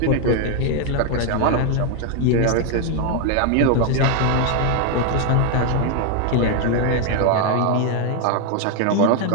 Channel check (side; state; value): both; different; correlation 0.01